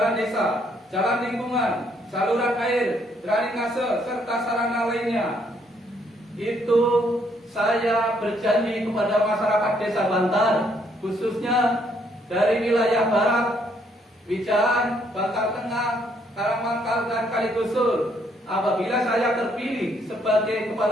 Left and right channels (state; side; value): normal; both; correlation 0.70